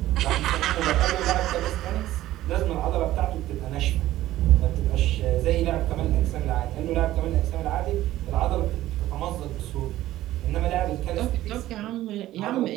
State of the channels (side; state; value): left; quieter; 14.8 dB